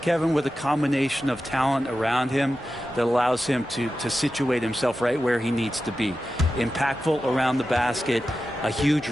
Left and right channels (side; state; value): both; normal; correlation 0.92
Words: with a combination of talent around him that allows him to situate himself right where he needs to be. Impactful around the basket, a huge